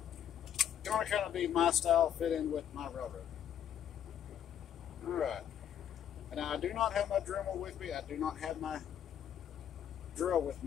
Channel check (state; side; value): quieter; right; 9.7 dB